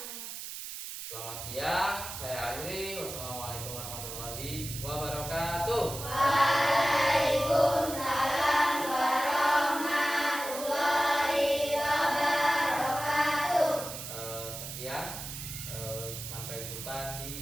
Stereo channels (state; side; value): noise; right; hiss, 8 dB below the sound